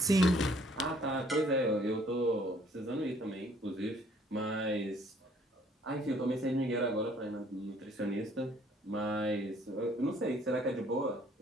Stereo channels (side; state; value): both; normal; correlation 0.61